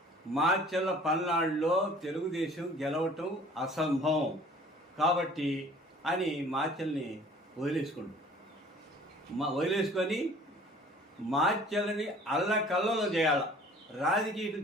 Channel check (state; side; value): normal; both; correlation 0.50